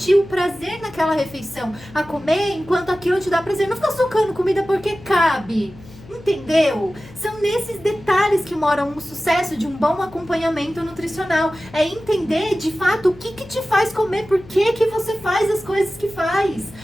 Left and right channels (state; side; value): noise; left; hum, 20 dB below the sound